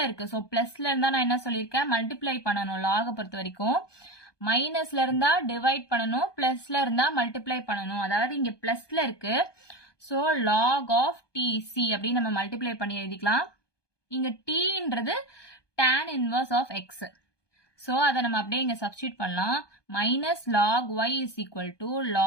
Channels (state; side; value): late; right; 1.2 ms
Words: இருக்கு, so பிளஸ்ல இருந்தா நான் என்ன சொல்லியிருக்கேன், மல்டிப்ளை பண்ணணும். log பொறுத்த வரைக்கும் மைனஸ்ல இருந்தா டிவைட் பண்ணணும், பிளஸ்ல இருந்தா மல்டிப்ளை பண்ணணும். அதாவது இங்க பிளஸ்ல இருக்கு, so log of tc அப்படின்னு நம்ம மல்டிப்ளை பண்ணி எழுதிக்கலாம். இங்க tன்றது tan inverse of x. so அதை நம்ம அப்படியே இங்க சப்ஸ்டிட்யூட் பண்ணலாம். minus log y is equal to